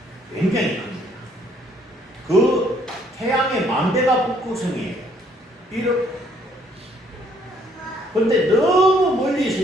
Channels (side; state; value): both; normal; correlation 0.65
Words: 굉장히 큽니다. 그 태양의 만배가 북극성이에요. 근데 너무 멀리